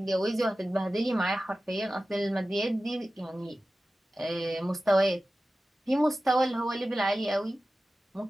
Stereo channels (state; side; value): normal; both; correlation 0.95